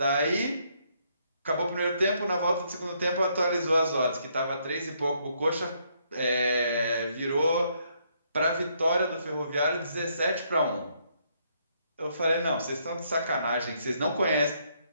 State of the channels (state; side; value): inverted; both; correlation -0.72